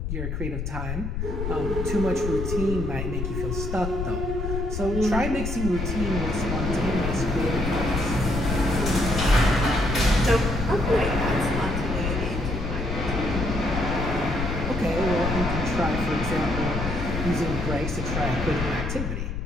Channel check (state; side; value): noise; left; rumble, 3 dB below the sound